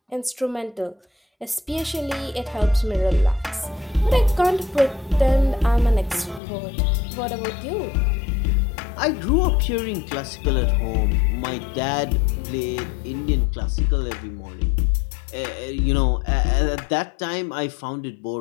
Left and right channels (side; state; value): right; drops out; at 6.4 s